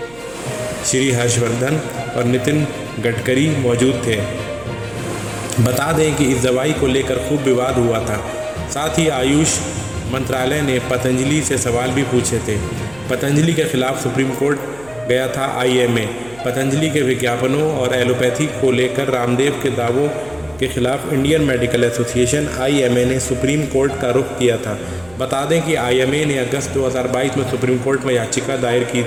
श्री हर्षवर्धन और नितिन गडकरी मौजूद थे। बता दें कि इस दवाई को लेकर खूब विवाद हुआ था। साथ ही आयुष मंत्रालय ने पतंजलि से सवाल भी पूछे थे। पतंजलि के खिलाफ सुप्रीम कोर्ट गया था IMA। पतंजलि के विज्ञापनों और एलोपैथी को लेकर रामदेव के दावों के खिलाफ इंडियन मेडिकल एसोसिएशन IMA ने सुप्रीम कोर्ट का रुख किया था। बता दें कि IMA ने अगस्त 2022 में सुप्रीम कोर्ट में याचिका दायर की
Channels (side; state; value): right; noise; hum, 23 dB below the sound